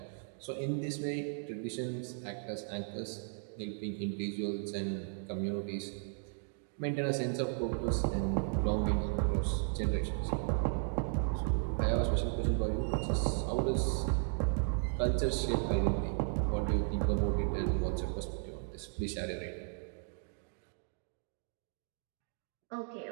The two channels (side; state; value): left; silent; 54 dB below the other